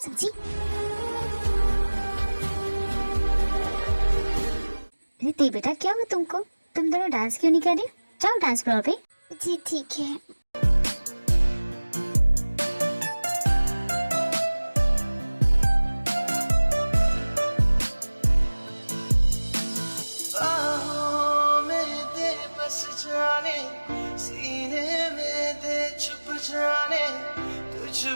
अरे ते बेटा क्या हुआ तुमको? तुम दोनों डांस क्यों नहीं कर रहे? जाओ डांस फ्लोर पे। जी ठीक है। बाहों में दे बस जाने, सीने में दे छुप जाने, तुझ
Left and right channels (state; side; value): inverted; both; correlation -1.00